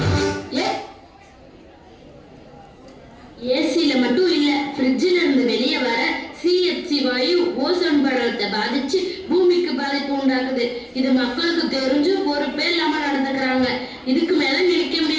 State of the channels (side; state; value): both; identical; correlation 1.00